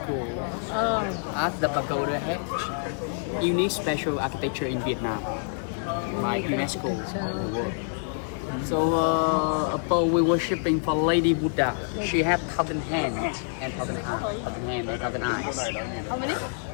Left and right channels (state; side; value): silent; right; digital silence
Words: as the pagoda had unique special architecture in Vietnam by UNESCO of the world. So above we worshiping for Lady Buddha. She have thousand hands and thousand eyes. How many?